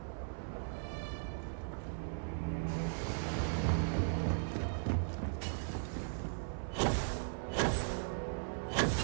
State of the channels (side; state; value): left; silent; 53 dB below the other